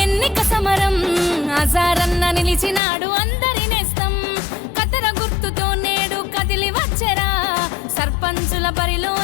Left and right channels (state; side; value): drops out; right; at 2.8 s